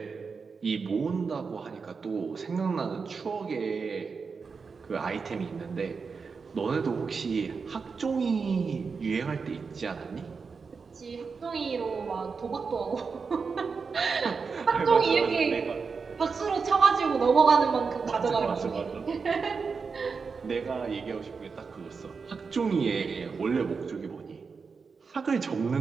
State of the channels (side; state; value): left; quieter; 5.1 dB